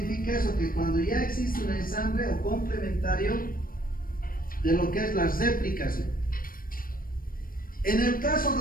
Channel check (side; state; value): right; late; 0.41 ms